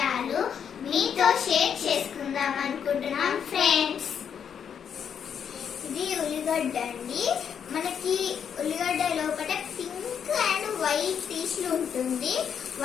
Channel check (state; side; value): quieter; right; 7.8 dB